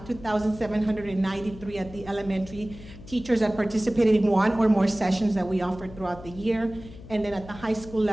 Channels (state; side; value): noise; left; hum, 16 dB below the sound